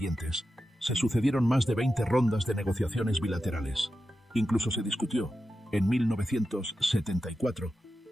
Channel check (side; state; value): both; normal; correlation 0.90